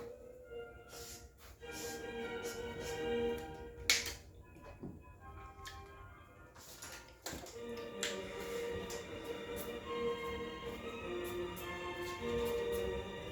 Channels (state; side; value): identical; both; correlation 1.00